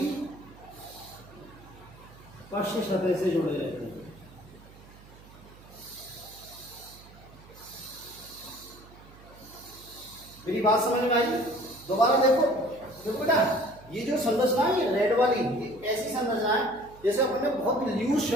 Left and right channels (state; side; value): noise; right; hum, 21 dB below the sound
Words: पश्च सतह से जुड़े रहते हैं। मेरी बात समझ में आई? दोबारा देखो, देखो बेटा, ये जो संरचना है, ये रेड वाली, ये ऐसी संरचना है जैसे अपने बहुत लूज